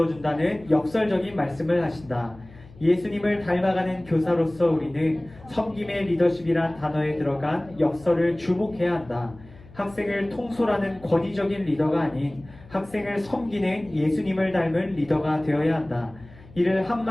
준다는 역설적인 말씀을 하신다. 예수님을 닮아가는 교사로서 우리는 섬김의 리더십이란 단어에 들어간 역설을 주목해야 한다. 학생을 통솔하는 권위적인 리더가 아닌 학생을 섬기는 예수님을 닮은 리더가 되어야 한다. 이를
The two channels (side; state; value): left; noise; hum, 22 dB below the sound